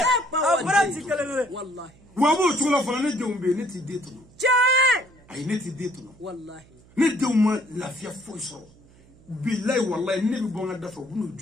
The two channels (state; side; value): noise; right; hum, 26 dB below the sound